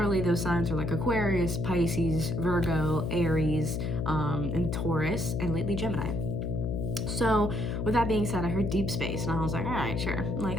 those signs are like Aquarius, Pisces, Virgo, Aries, and Taurus, and lately Gemini. So with that being said, I heard deep space, and I was like, all right, sure. I'm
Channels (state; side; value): noise; left; hum, 1 dB below the sound